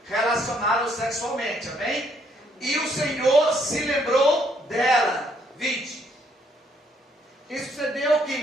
relacionaram sexualmente. Amém? E o Senhor se lembrou dela. 20. E sucedeu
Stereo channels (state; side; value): normal; both; correlation 0.69